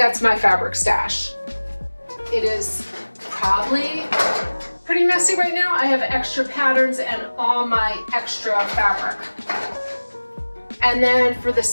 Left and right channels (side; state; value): both; inverted; correlation -1.00